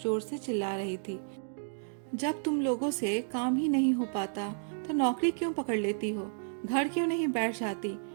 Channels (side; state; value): left; silent; digital silence